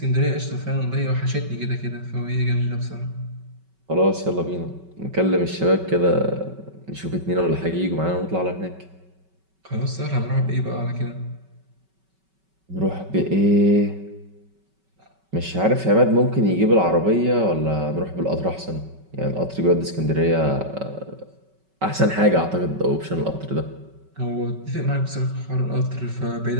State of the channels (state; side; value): late; left; 5.3 ms